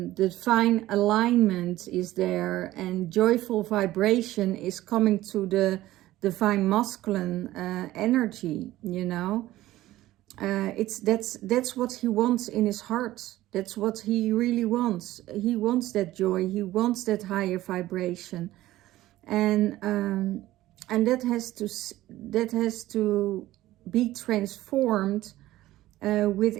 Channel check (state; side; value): quieter; left; 15.7 dB